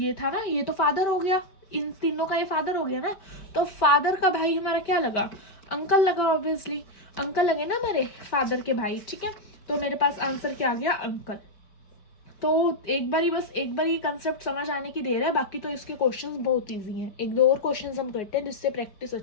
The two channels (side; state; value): right; late; 5.2 ms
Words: था ना, ये तो फादर हो गया, इन तीनों का ये फादर हो गया ना, तो फादर का भाई हमारा क्या लगा, अंकल लगा, ऑब्वियसली अंकल लगे ना हमारे फादर के भाई, ठीक है। तो मेरे पास आंसर क्या आ गया, अंकल। तो एक बार ये कंसेप्ट समझ आने की देर है, बाकी तो इसके क्वेश्चंस बहुत इजी हैं। एक दो और क्वेश्चंस हम करते हैं जिससे प्रैक्टिस